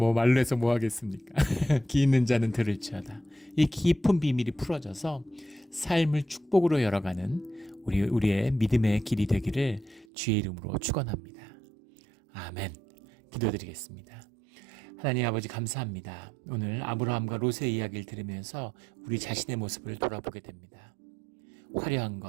말로 해서 뭐 하겠습니까? 귀 있는 자는 들을지어다. 이 깊은 비밀이 풀어져서 삶을 축복으로 열어가는 우리의 믿음의 길이 되기를 주의 이름으로 축원합니다. 아멘. 기도드리겠습니다. 하나님 아버지 감사합니다. 오늘 아브라함과 롯의 이야기를 들으면서 우리 자신의 모습을 돌아보게 됩니다. 화려한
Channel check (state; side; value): drops out; left; at 10.1 s